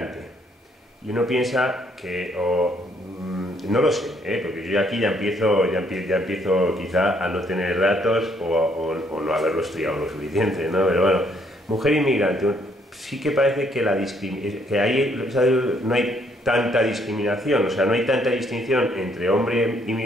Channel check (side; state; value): both; normal; correlation 0.68